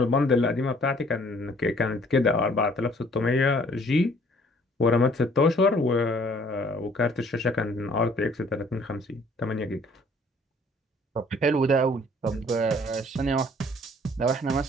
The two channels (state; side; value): normal; both; correlation 0.58